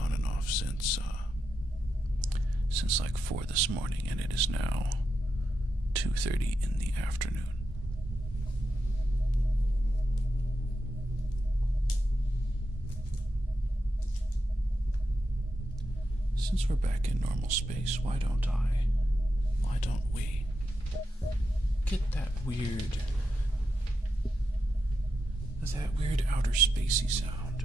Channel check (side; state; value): both; normal; correlation 0.86